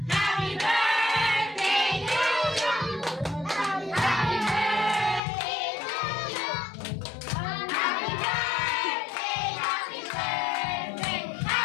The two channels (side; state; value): right; drops out; at 5.2 s